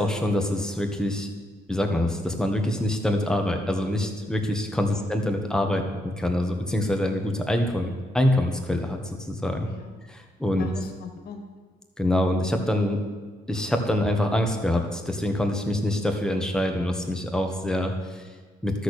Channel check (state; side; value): normal; both; correlation 0.80